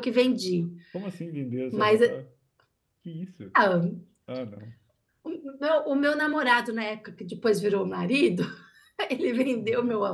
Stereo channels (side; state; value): both; identical; correlation 1.00